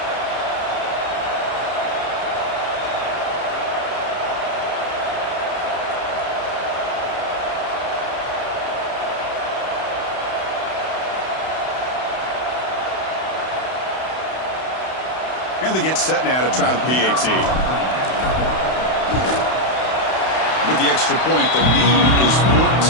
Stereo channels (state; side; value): late; right; 32 ms